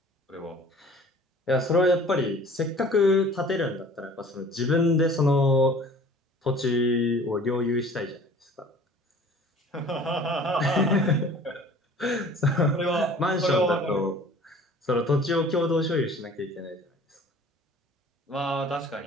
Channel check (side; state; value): both; normal; correlation 0.48